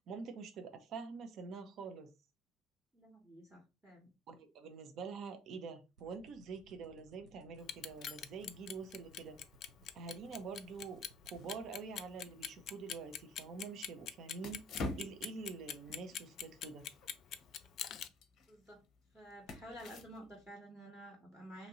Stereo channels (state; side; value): normal; both; correlation 0.52